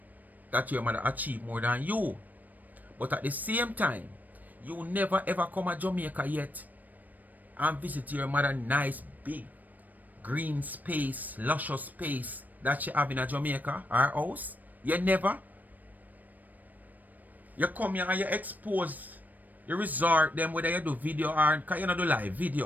that your mother achieve more than you. But at the same time, you never ever come to Jamaica yet and visit your mother nice big green space, luscious space that she have in a Jamaica, her house. You never. You come here and you expose the resort them whether you do video or because you not do live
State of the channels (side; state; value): left; late; 0.084 ms